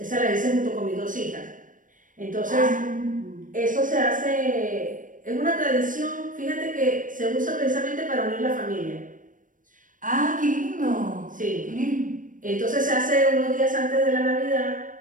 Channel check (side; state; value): left; late; 0.38 ms